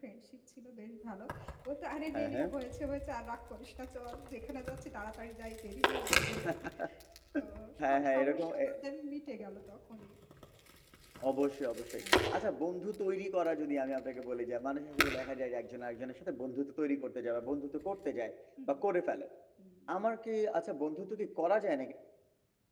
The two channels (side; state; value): both; identical; correlation 1.00